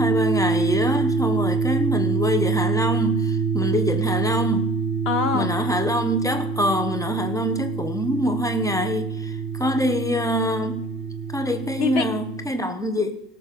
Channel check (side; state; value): both; normal; correlation 0.49